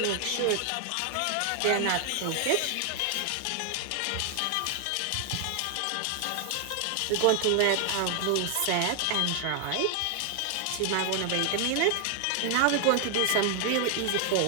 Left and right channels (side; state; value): both; different; correlation 0.00